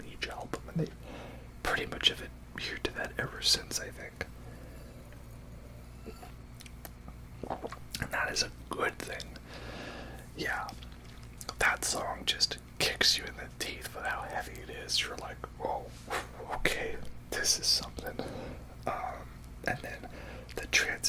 each album, and they pretty much have adhered to that ever since, I think. And that is a good thing. Yeah, that song just kicks you in the teeth with how heavy it is. You're like, whoa, okay, this is something. And then the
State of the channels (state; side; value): identical; both; correlation 1.00